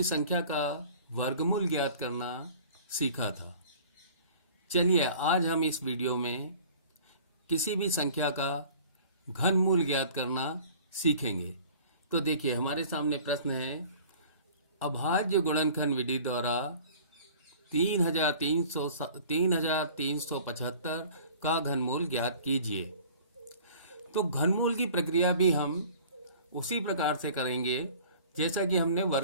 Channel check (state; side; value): inverted; both; correlation -0.47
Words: संख्या का वर्गमूल ज्ञात करना सीखा था, चलिए आज हम इस वीडियो में किसी भी संख्या का घनमूल ज्ञात करना सीखेंगे। तो देखिए, हमारे सामने प्रश्न है, अभाज्य गुणनखंड विधि द्वारा 3375 का घनमूल ज्ञात कीजिए। तो घनमूल की प्रक्रिया भी हम उसी प्रकार से करेंगे जैसा कि हमने